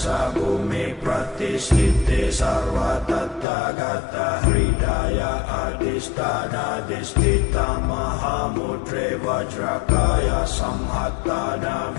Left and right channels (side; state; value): right; drops out; at 3.5 s